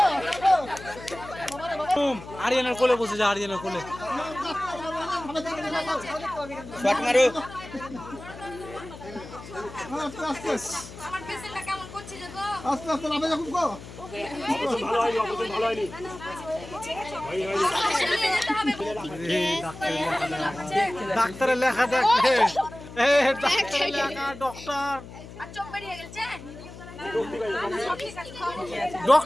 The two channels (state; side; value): noise; left; hum, 15 dB below the sound